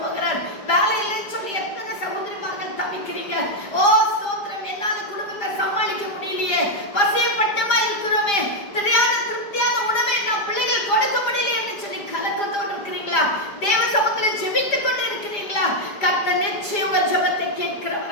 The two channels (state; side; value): late; right; 5.0 ms